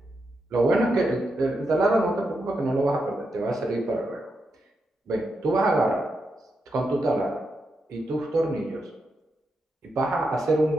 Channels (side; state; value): both; normal; correlation 0.85